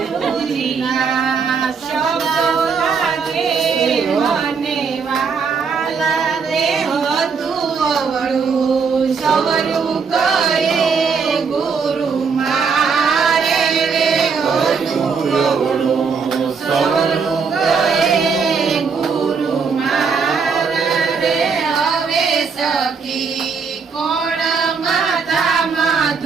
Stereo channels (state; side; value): quieter; left; 5.5 dB